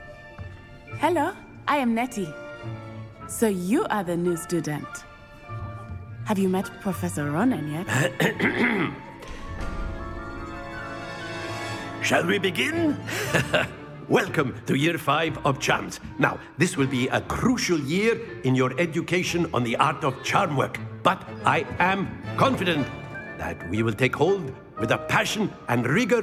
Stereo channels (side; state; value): both; identical; correlation 1.00